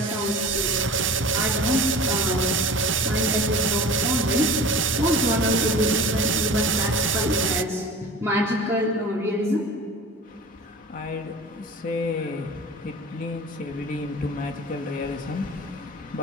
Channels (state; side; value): normal; both; correlation 0.38